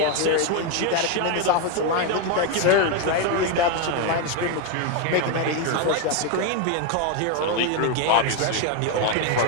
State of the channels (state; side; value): different; both; correlation 0.02